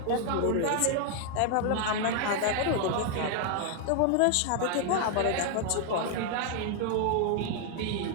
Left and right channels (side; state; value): both; different; correlation 0.00